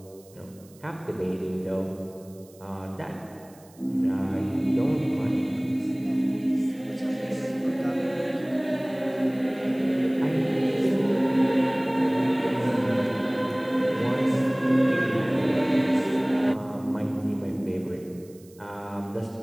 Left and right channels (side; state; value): right; noise; hiss, 27 dB below the sound